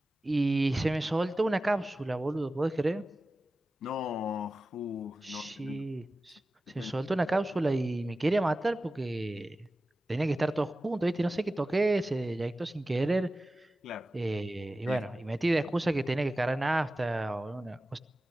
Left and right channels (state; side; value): normal; both; correlation 0.95